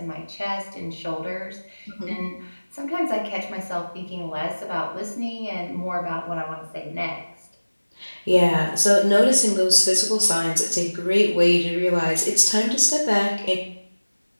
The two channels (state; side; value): inverted; both; correlation -1.00